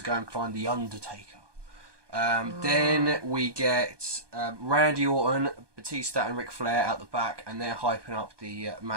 go and find The Undertaker. Then we get Randy Orton, Batista and Ric Flair out the back, and they're hyping up the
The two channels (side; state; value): left; late; 1.2 ms